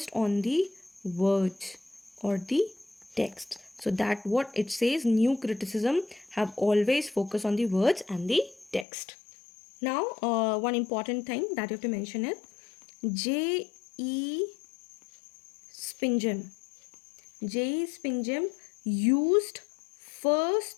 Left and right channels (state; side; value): drops out; right; at 8.8 s